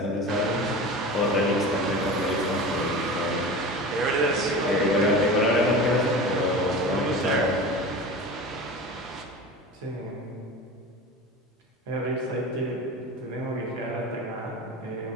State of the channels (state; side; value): normal; both; correlation 0.32